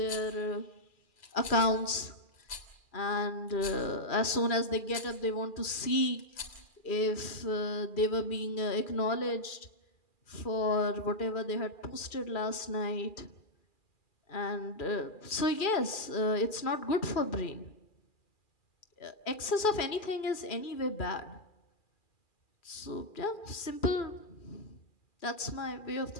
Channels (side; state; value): right; late; 2.4 ms